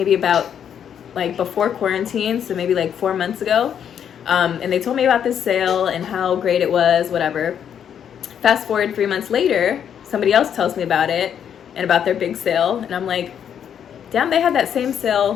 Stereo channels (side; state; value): right; quieter; 8.7 dB